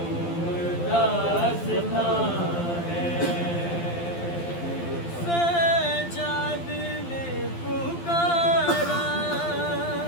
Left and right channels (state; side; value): late; right; 12 ms